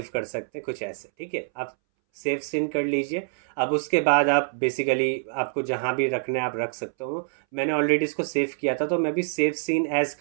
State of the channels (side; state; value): left; silent; 61 dB below the other